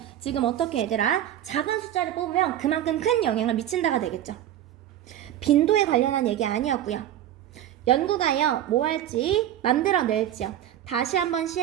지금 어떻게 얘들아? 작은 숫자를 뽑으면 그만큼 큰 영향을 미친다가 되겠죠. 빈도에 관련한 얘기 아니었고요. 연구가요 뭐 할지 만들어낼지요. 다시 한번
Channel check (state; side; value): quieter; left; 11.8 dB